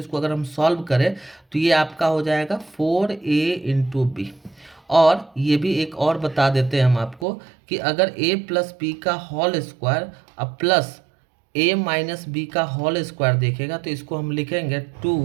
अगर हम सॉल्व करें तो ये आपका हो जाएगा 4a इंटू बी। और ये भी एक और बता देते हैं हम आपको कि अगर a प्लस बी का होल स्क्वायर अब प्लस a माइनस बी का होल स्क्वायर देखेगा तो इसको हम लिखेंगे 2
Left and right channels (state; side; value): drops out; left; at 7.2 s